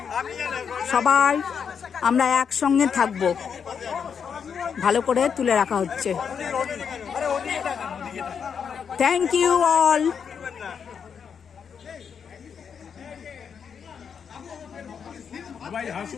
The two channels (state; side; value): quieter; right; 6.9 dB